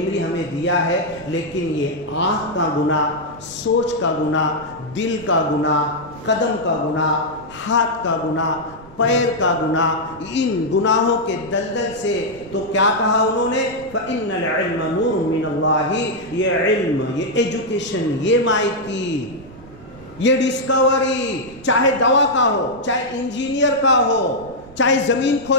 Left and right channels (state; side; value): noise; right; rumble, 21 dB below the sound